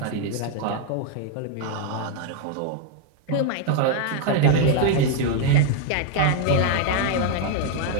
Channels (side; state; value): both; different; correlation 0.01